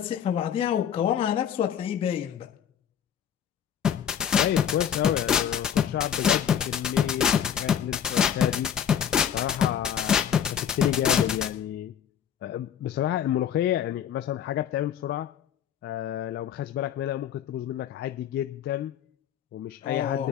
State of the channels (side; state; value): right; quieter; 8.9 dB